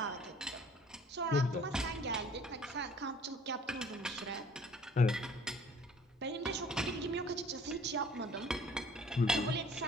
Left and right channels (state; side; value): normal; both; correlation 0.53